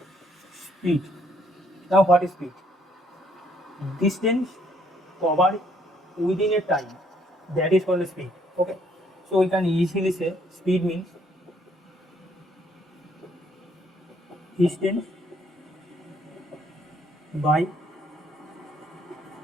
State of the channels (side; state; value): both; normal; correlation 0.67